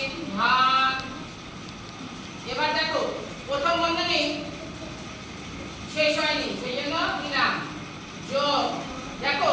ভাগ। এবার দেখো প্রথম বন্ধনী শেষ হয়নি, সেই জন্য দিলাম যোগ। দেখো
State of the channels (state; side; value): identical; both; correlation 1.00